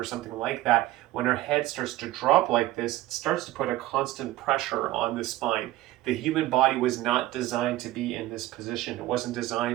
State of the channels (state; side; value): quieter; left; 16.1 dB